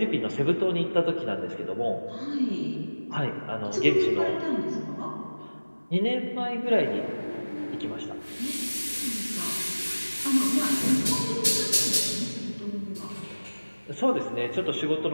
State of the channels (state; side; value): inverted; both; correlation -1.00